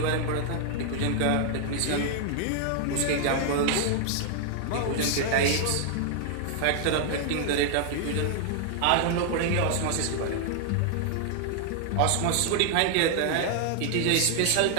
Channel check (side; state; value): both; different; correlation 0.00